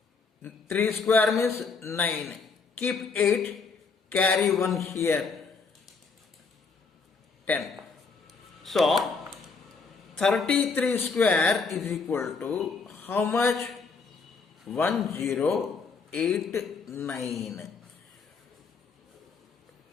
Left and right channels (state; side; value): quieter; right; 4.7 dB